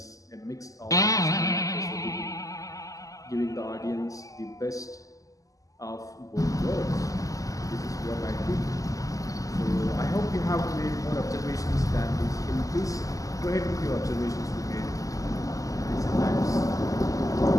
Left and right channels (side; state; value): right; late; 0.17 ms